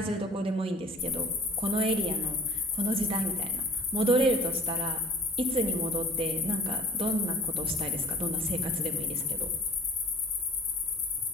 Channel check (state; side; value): normal; both; correlation 0.47